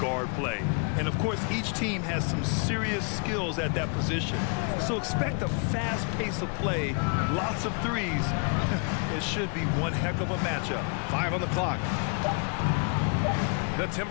play. And, of course, each team has some serious skills at that position. So expect a fast pace of play, lots of threes. It should be one heck of a matchup. 5 on the clock. The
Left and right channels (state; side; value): quieter; right; 35.3 dB